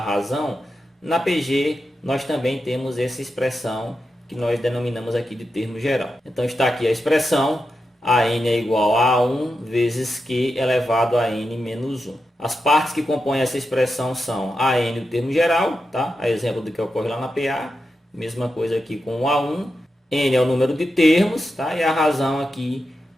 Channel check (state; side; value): normal; both; correlation 0.88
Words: razão, na PG nós também temos essa expressão que nós denominamos aqui de termo geral. Então está aqui a expressão AN é igual a 1 vezes Q elevado a N menos 1. As partes que compõem essa expressão são AN, o termo geral, tá? A exemplo do que ocorre lá na PA. Mesma coisa aqui com o A1. N é o número de termos, tá? E a razão aqui